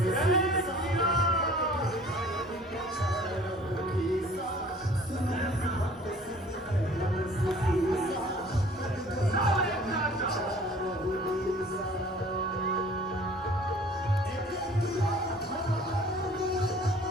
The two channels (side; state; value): both; normal; correlation 0.50